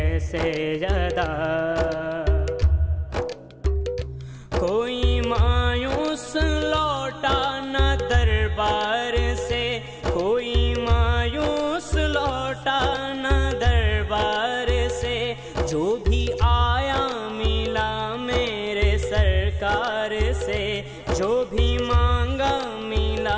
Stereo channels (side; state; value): both; identical; correlation 1.00